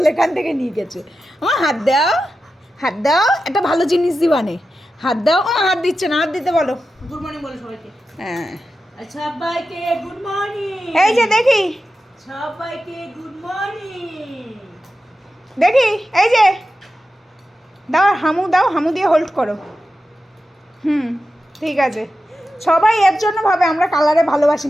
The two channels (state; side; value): normal; both; correlation 0.92